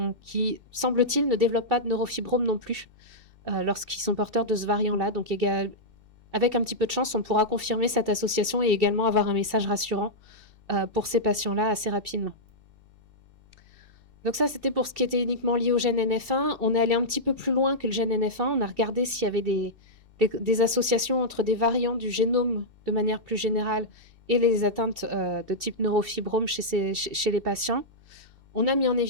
semble-t-il, ne développent pas de neurofibrome non plus lorsqu'ils sont porteurs de ce variant-là. Donc, avec un petit peu de chance, on pourra confirmer cette association et également avoir un message rassurant pour ces patients-là assez rapidement. Donc ça, c'était pour ce qui était uniquement lié au gène NF1. On est allé un petit peu plus loin que le gène NF1. On a regardé s'il y avait des associations entre des variants du génome de manière plus générale et les atteintes de type neurofibrome chez les patients. On a mis en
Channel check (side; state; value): left; late; 2.6 ms